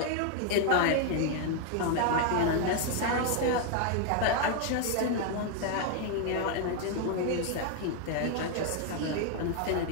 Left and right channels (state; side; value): different; both; correlation 0.00